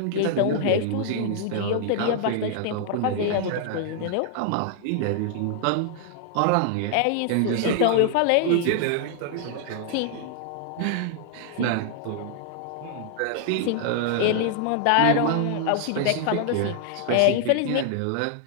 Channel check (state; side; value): different; both; correlation -0.01